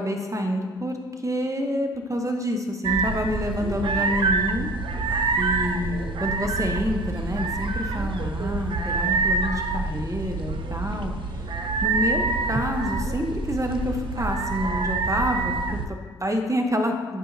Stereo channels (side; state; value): both; normal; correlation 0.44